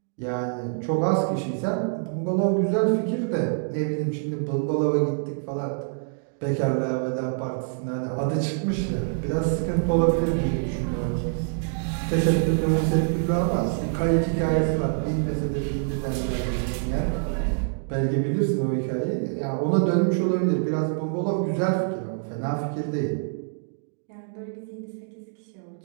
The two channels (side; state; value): left; silent; digital silence